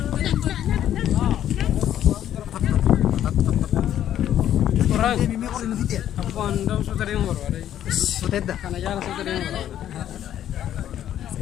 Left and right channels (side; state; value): right; quieter; 11.1 dB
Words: Aku andam sudah yang baru ada. Sutedda. Karena jalan sudah yang baru.